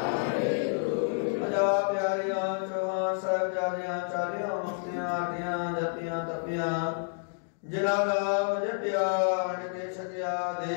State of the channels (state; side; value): silent; right; digital silence